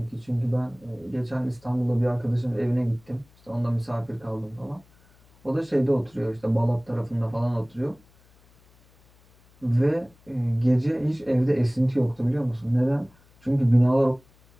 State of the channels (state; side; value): noise; left; hum, 30 dB below the sound